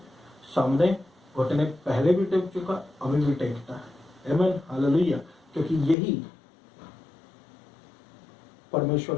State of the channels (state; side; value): drops out; right; at 6.0 s